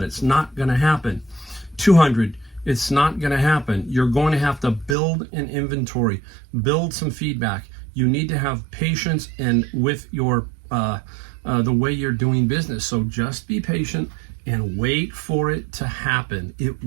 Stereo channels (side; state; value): left; drops out; at 5.0 s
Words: It's not going to happen. 200, it's not going to happen. You're going to have to build an inventory, build some feedback. You need to have patience and with your the way you're doing business. So just be patient and wait for it to happen. It